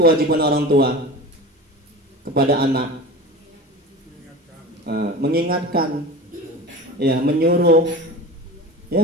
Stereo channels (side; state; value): both; normal; correlation 0.33